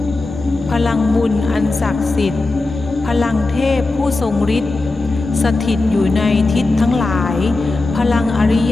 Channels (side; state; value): right; quieter; 3.2 dB